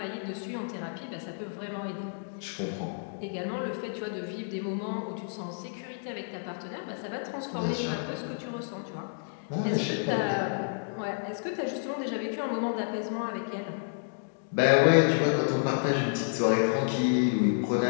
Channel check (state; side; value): silent; right; digital silence